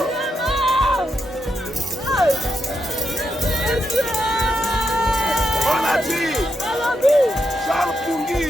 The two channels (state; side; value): normal; both; correlation 0.84